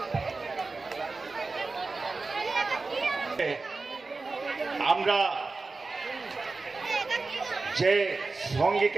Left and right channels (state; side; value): quieter; left; 3.8 dB